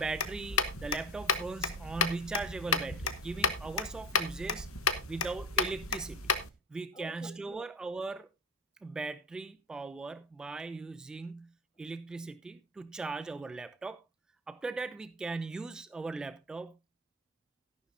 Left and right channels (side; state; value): both; normal; correlation 0.25